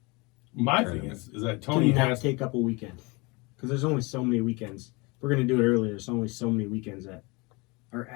My thing is that Can Tony you not has. take up a weekend? Because there's only so many weekends. If we're going to do it earlier, there's only so many weekends that are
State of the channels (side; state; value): right; quieter; 26.8 dB